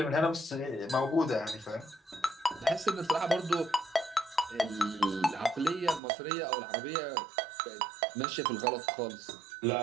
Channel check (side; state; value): left; drops out; at 6.0 s